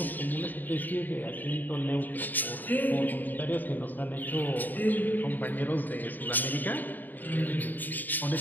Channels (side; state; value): right; late; 0.087 ms